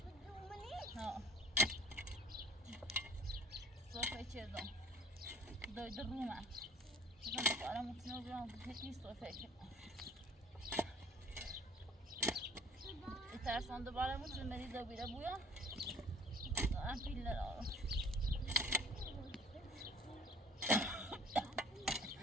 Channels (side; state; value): both; normal; correlation 0.50